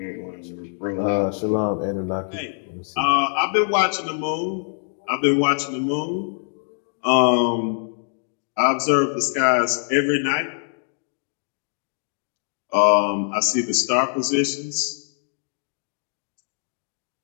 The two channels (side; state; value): right; silent; digital silence